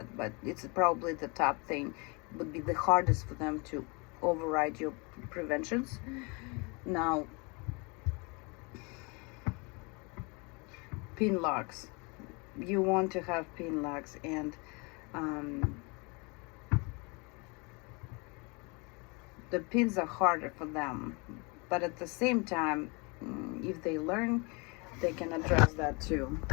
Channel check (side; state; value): right; quieter; 30.2 dB